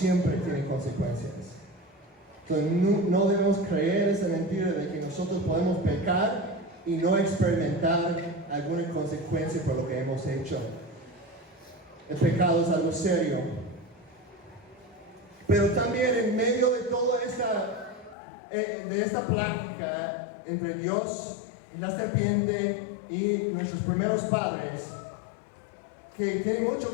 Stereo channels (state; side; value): drops out; right; at 18.2 s